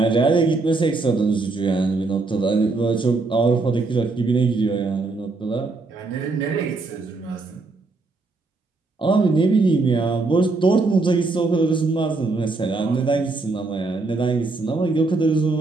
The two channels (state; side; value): quieter; left; 3.6 dB